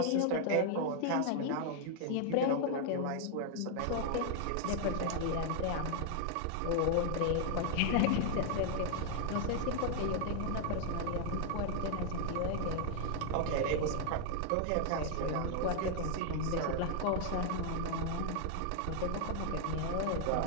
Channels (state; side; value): different; both; correlation 0.00